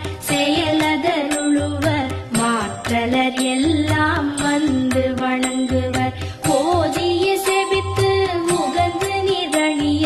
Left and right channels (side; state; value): both; identical; correlation 1.00